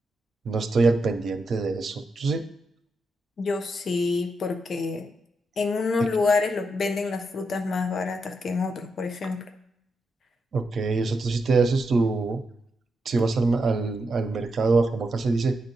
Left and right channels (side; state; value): both; normal; correlation 0.84